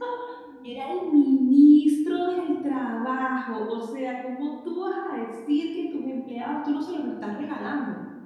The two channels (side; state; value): both; identical; correlation 1.00